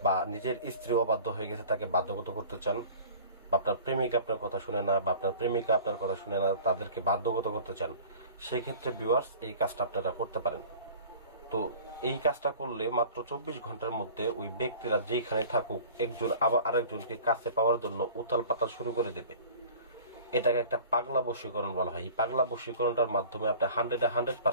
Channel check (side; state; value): both; inverted; correlation -0.44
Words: বা নিজের স্ত্রী অবাধ্য হয়ে গেছে তাকে বাধ্যগত করতে চান, বা আপনার প্রেমিক আপনার কথা শুনে না বা আপনার প্রেমিকা আপনার কথা শুনে না, তাদেরকে বাধ্যগত করতে চান, সেই ক্ষেত্রে ভিউয়ার্স এই কাজটা আপনারা করতে পারেন। তো এই কাজটা করলে মাত্র 24 ঘন্টার মধ্যে ওই ব্যক্তিরা যেখানে থাকুক একজন আবার আরেকজনকে কাছে পাওয়ার জন্য উতাল পাতাল শুরু করে দেবে। এটাকে একটা পাগলা বশীকরণ বলা হয়। এই পাগলা বশীকরণটার মাধ্যমে আপনি